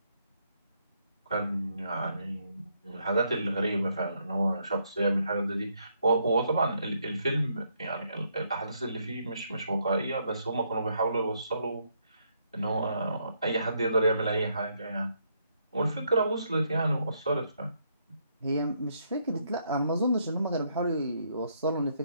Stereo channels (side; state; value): both; inverted; correlation -0.74